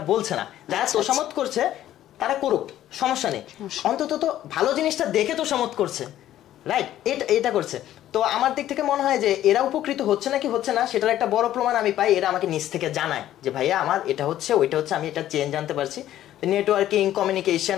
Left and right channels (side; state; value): right; quieter; 12.6 dB